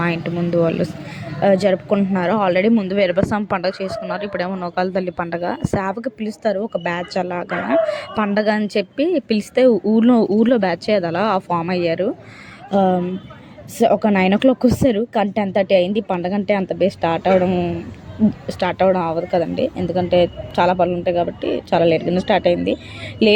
ఇంటి ముందు వాళ్ళు జరుపుకుంటున్నారు. ఆల్రెడీ ముందు వీరభద్రస్వామి పండగ చేసుకున్నారు. ఇప్పుడేమో నూకాల తల్లి పండగ. సేవకి పిలుస్తారు ఒక బ్యాచ్ అలాగా. పండగ అని చెప్పి పిలిస్తే ఊర్లో బ్యాచ్ అది అలా ఫామ్ అయ్యారు. ఒక 9 o'clock వస్తారు. కానీ 10:30 అయింది. ఈ పండగ అంటే అంత బే స్టార్ట్ అవ్వడం అవ్వదు కదండి. ఎందుకంటే చాలా పనులు ఉంటాయి కాబట్టి చాలా లేట్గానే స్టార్ట్ అయింది.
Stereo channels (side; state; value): both; identical; correlation 1.00